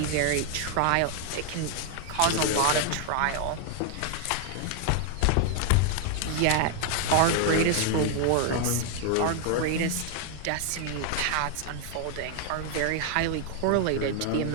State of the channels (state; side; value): different; both; correlation 0.00